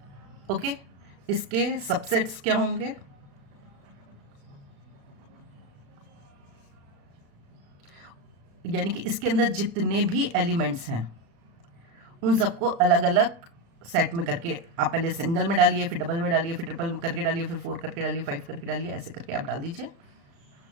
ओके, इसके सबसेट्स क्या होंगे? यानी कि इसके अंदर जितने भी एलिमेंट्स हैं उन सबको अलग अलग सेट में करके आप पहले सिंगल में डालिए, फिर डबल में डालिए, फिर ट्रिपल करके डालिए, फिर 4 करके डालिए, 5 करके डालिए, ऐसे करके आप डाल दीजिए.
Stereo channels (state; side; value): late; left; 35 ms